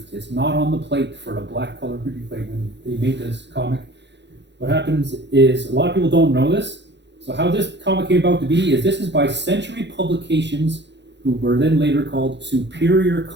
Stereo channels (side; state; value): left; late; 0.51 ms